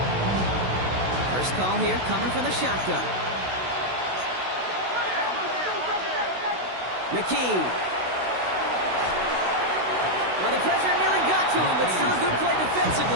First call here coming from the shotgun. McKee. Well, the pressure nearly got to him, but still a good play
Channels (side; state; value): left; late; 16 ms